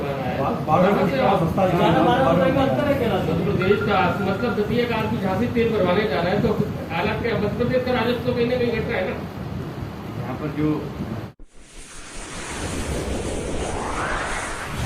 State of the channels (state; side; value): identical; both; correlation 1.00